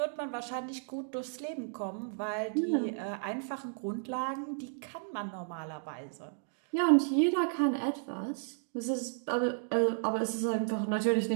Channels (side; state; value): left; silent; digital silence